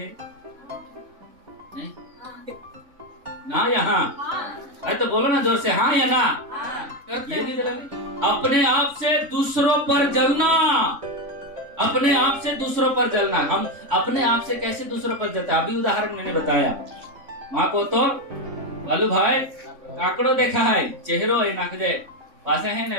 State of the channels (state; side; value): late; left; 3.6 ms